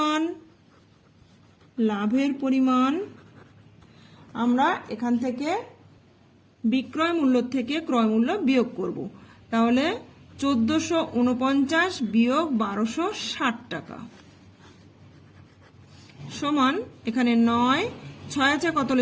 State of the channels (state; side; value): identical; both; correlation 1.00